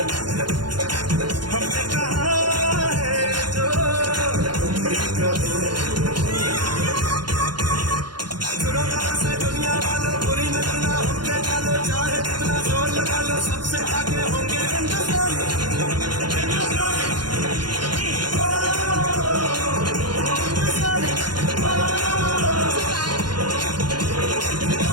हमने कहा है जो तुम भी कहो। सुनो गौर से दुनिया वालों, बुरी नजर ना हम पे डालो। चाहे जितना जोर लगा लो, सबसे आगे होंगे हिंदुस्तान।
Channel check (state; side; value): late; left; 0.71 ms